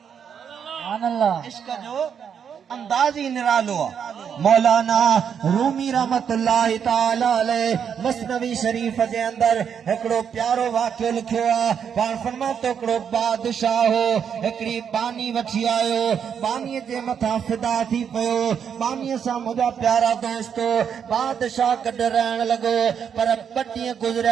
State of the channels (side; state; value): left; quieter; 7.7 dB